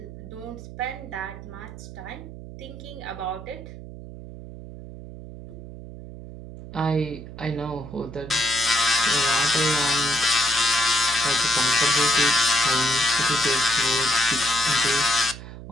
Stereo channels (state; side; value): noise; right; hum, 13 dB below the sound